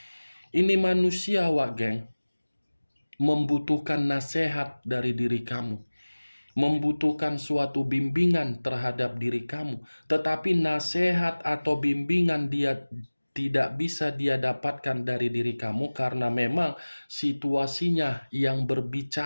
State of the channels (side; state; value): both; inverted; correlation -1.00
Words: Ini manusia, Wak Geng, membutuhkan nasihat dari diri kamu, membutuhkan suatu bimbingan terhadap diri kamu, tetapi nasihat atau bimbingan dia tidak bisa dia dapatkan dari diri kamu karena memang situasinya yang